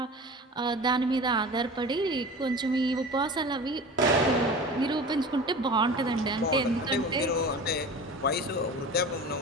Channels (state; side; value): normal; both; correlation 0.36